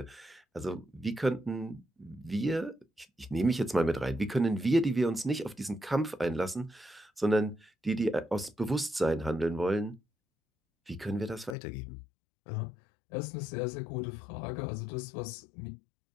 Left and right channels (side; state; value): right; drops out; at 11.6 s